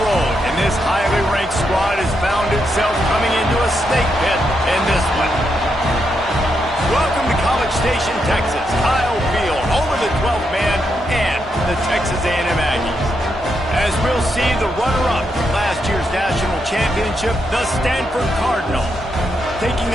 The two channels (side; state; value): both; normal; correlation 0.81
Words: road. And this highly ranked squad has found itself coming into a snake pit in this one. Welcome to College Station, Texas. Kyle Field, home of the 12th man and the Texas A&M Aggies. As we'll see, the runner-up from last year's national championship, the Stanford Cardinal, taking